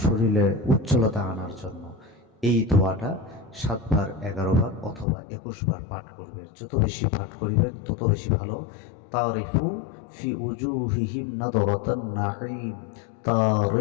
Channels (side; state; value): right; drops out; at 5.1 s